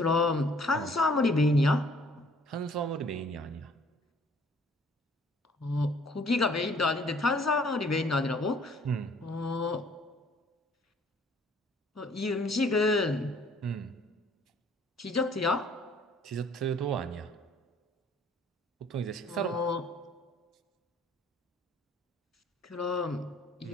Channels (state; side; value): normal; both; correlation 0.58